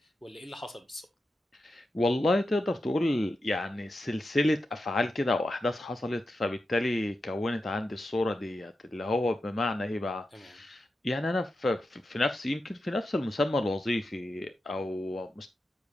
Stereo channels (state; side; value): normal; both; correlation 0.90